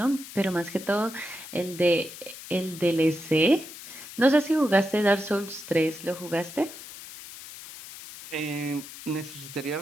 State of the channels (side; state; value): left; noise; hiss, 14 dB below the sound